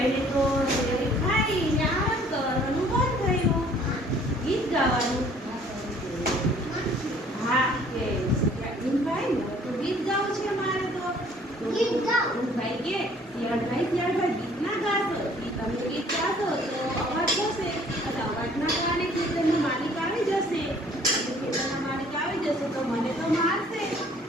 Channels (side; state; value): both; normal; correlation 0.56